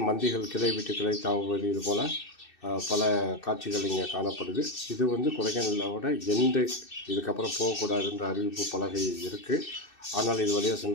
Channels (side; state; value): right; late; 2.6 ms